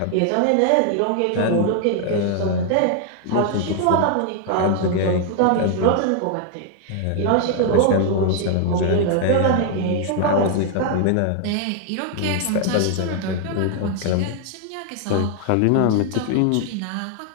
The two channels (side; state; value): both; different; correlation 0.00